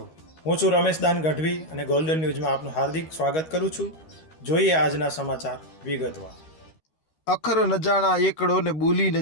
હું છું રમેશ દાન ગઢવી અને ગોલ્ડન ન્યૂઝમાં આપનું હાર્દિક સ્વાગત કરું છું. જોઈએ આજના સમાચાર વિગતવાર. અખર ન જાણા એકડો ને બોલી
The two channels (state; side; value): late; right; 13 ms